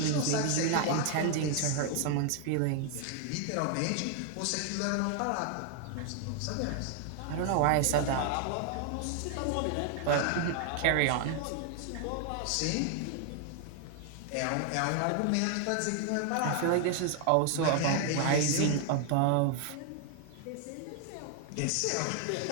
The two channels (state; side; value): different; both; correlation 0.00